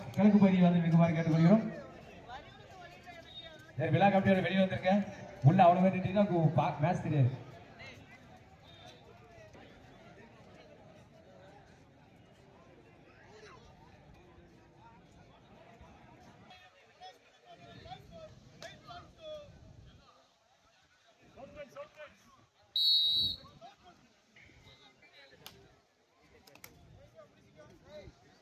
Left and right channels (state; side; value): identical; both; correlation 1.00